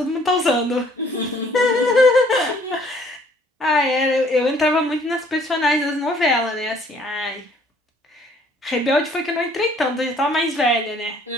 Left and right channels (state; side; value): normal; both; correlation 0.60